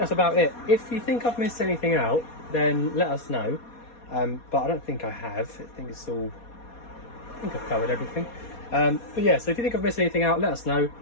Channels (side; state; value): right; late; 4.2 ms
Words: about it. If you think I've missed anything out, then let us know. But I don't think I have. I think I've covered everything. But yeah, so if you think I've missed anything out, let us know.